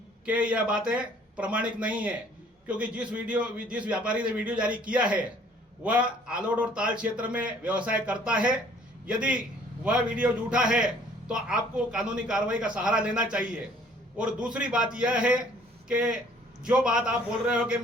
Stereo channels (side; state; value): both; normal; correlation 0.57